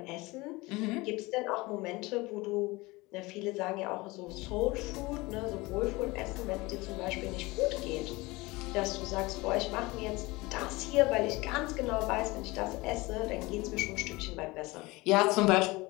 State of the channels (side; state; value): right; quieter; 22.3 dB